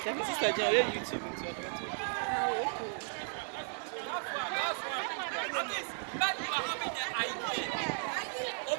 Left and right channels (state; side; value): silent; left; 54 dB below the other